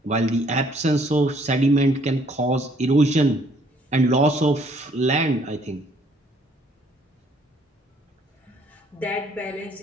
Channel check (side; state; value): both; normal; correlation 0.63